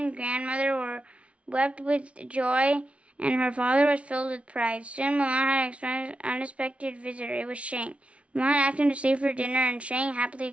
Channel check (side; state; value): left; late; 0.062 ms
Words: grandmother were wept with joy, and her father was filled with pride. Soon Mulan had an unexpected visitor. It was Shang. Mulan asked him to stay for dinner, and Shang happily